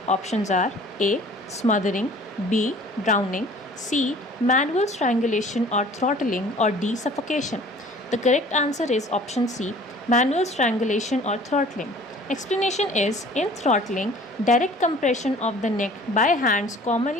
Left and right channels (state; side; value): normal; both; correlation 0.49